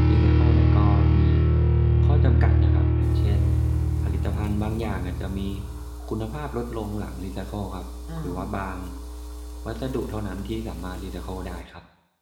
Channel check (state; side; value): identical; both; correlation 1.00